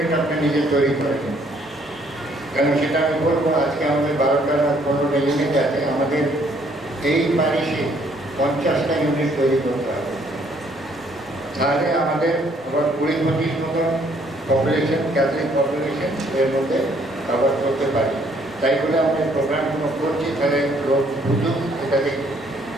আপনি নিজে তৈরি করেন। কেন সেটা আমি বলবো, আজকে আমাদের 12টা না 15টা ইউনিট আছে, আমাদের এই প্যারিশে 50টা ইউনিট তৈরি করতে হবে। তাহলে আমাদের আবার 20-25 মতন পপুলেশন, ক্যাথলিক পপুলেশন এর মধ্যে কভার করতে পারি। তাই বলে আমরা প্রোগ্রামগুলো করছি, তাহলে লোক বুঝুক এটাতে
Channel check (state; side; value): normal; both; correlation 0.65